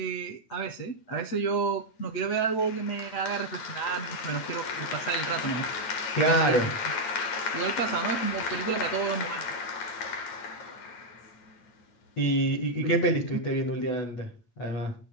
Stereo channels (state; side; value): late; right; 8.8 ms